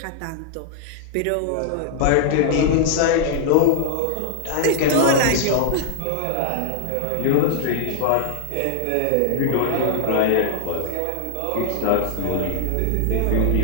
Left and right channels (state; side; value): different; both; correlation 0.00